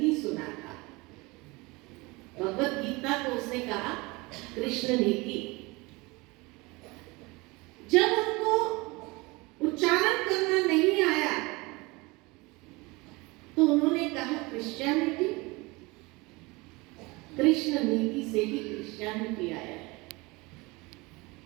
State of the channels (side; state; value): left; quieter; 24.3 dB